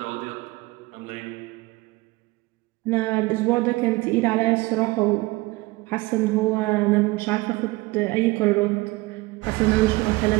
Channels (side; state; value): left; quieter; 21.9 dB